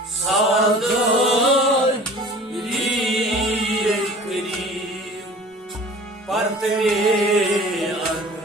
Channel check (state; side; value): normal; both; correlation 0.44